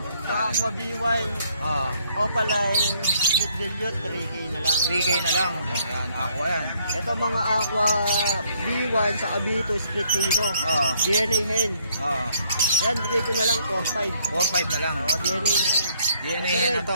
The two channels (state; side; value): inverted; both; correlation -0.67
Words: Sa Aqua B1, Opaline, Split Dilute, 3K na lang. 3K na lang. Yan, Aqua yan. Ito mga Aqua B1 sa B2 Split Tino. DNA hen. Yan, bigay ko na lang 4-5. 4-5 na lang. DNA na yan. DNA hen na